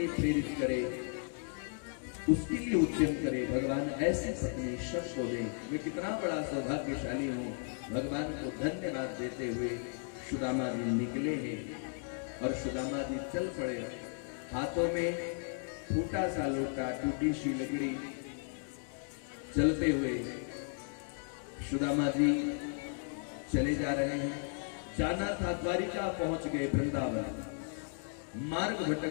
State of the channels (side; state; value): right; silent; 54 dB below the other